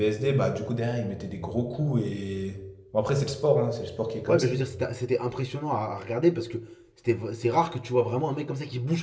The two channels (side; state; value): both; identical; correlation 1.00